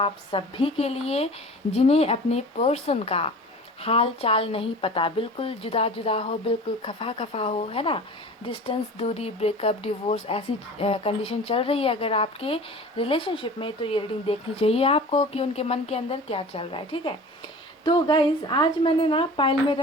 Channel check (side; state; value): both; normal; correlation 0.39